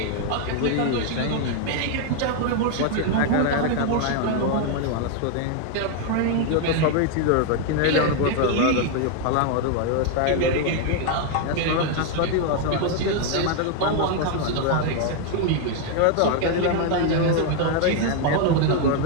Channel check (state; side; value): different; both; correlation 0.00